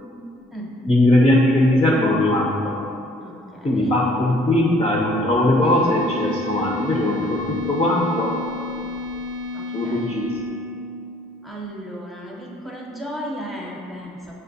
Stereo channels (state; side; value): normal; both; correlation 0.61